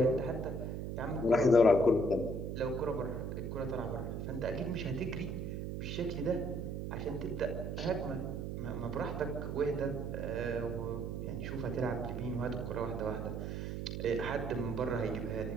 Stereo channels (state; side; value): noise; right; hum, 4 dB below the sound